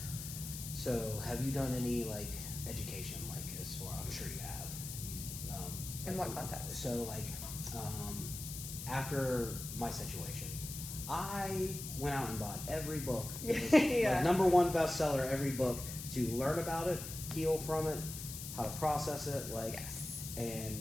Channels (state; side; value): noise; left; hiss, 8 dB below the sound